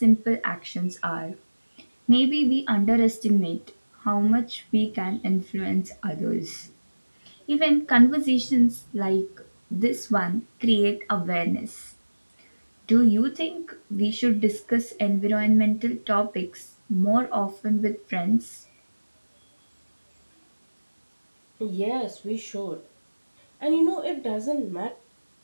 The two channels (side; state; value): both; inverted; correlation -1.00